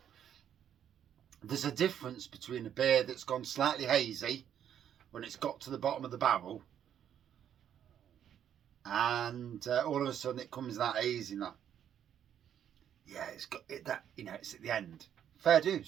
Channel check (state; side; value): quieter; left; 9.6 dB